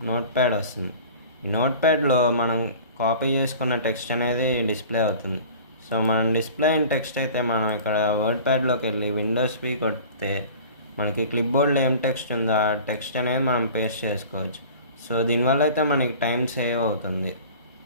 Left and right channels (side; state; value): both; inverted; correlation -0.42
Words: నోట్ ప్యాడ్ వస్తుంది. ఈ నోట్ ప్యాడ్లో మనం కాపీ చేసుకున్న టెక్స్ట్ అనేది డిస్ప్లే అవుతుంది. సో మనం డిస్ప్లే అయిన టెక్స్ట్ అయితే మనం ఇక్కడ వర్డ్ ప్యాడ్లోకి వెళ్ళి విండోస్ వి కొడితే మనకి క్లిప్ బోర్డ్లో ఏం టెక్స్ట్ ఉందో ఆ టెక్స్ట్ అనేది మనం పేస్ట్ చేసుకోవచ్చు. సో దీనివల్ల అయితే మనకి టైం సేవ్ అవుతుంది.